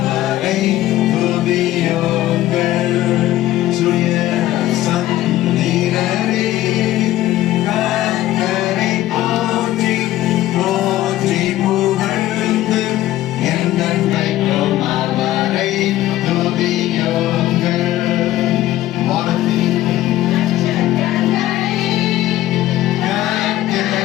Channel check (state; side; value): quieter; right; 14.7 dB